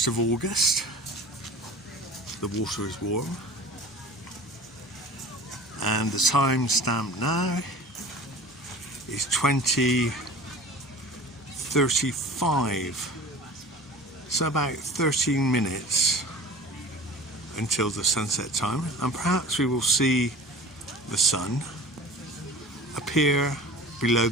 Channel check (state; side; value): normal; both; correlation 0.40